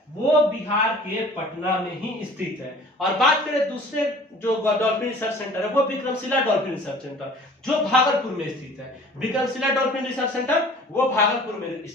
वो बिहार के पटना में ही स्थित है। और बात करें दूसरे जो डॉल्फिन रिसर्च सेंटर है वो विक्रमशिला डॉल्फिन रिसर्च सेंटर जो भागलपुर में स्थित है। विक्रमशिला डॉल्फिन रिसर्च सेंटर वो भागलपुर में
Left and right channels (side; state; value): both; normal; correlation 0.48